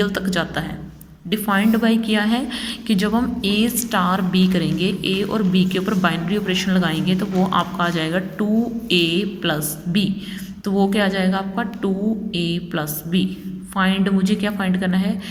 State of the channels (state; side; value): identical; both; correlation 1.00